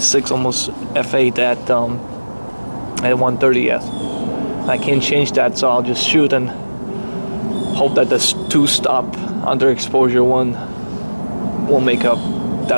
almost F8 at 130th. I can't change that, so I'll just shoot and hope that this 2-stop underexposure one won't make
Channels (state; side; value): inverted; both; correlation -1.00